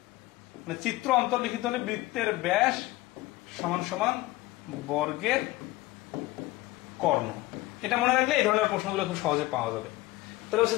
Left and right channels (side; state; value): right; quieter; 18.9 dB